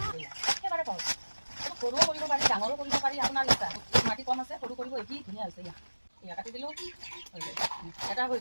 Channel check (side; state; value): both; inverted; correlation -1.00